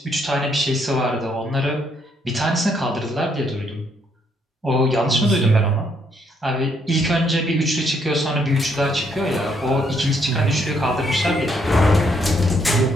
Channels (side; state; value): both; normal; correlation 0.72